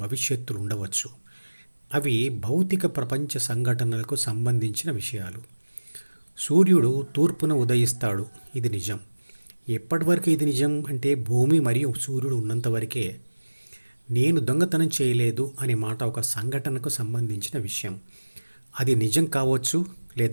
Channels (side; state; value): both; inverted; correlation -1.00